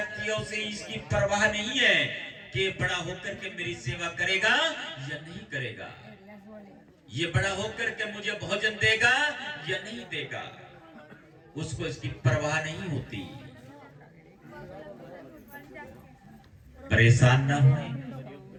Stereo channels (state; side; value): identical; both; correlation 1.00